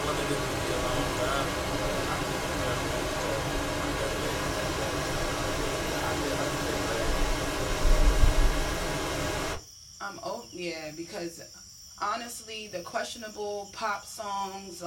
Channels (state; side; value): identical; both; correlation 1.00